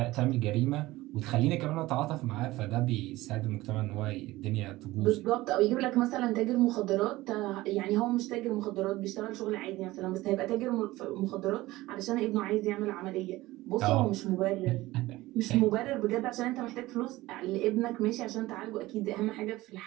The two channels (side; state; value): left; quieter; 18.3 dB